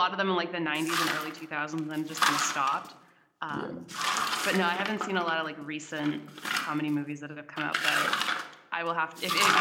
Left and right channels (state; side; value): identical; both; correlation 1.00